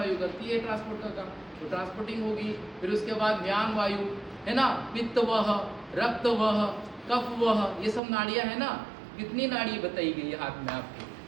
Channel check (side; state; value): left; drops out; at 8.0 s